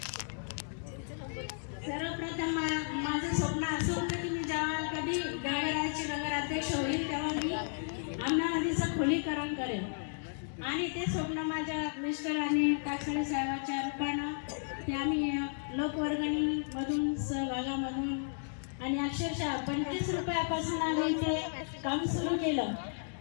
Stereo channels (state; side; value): silent; right; digital silence